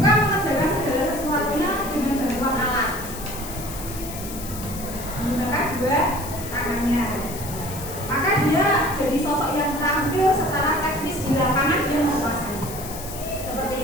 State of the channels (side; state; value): left; noise; hiss, 11 dB below the sound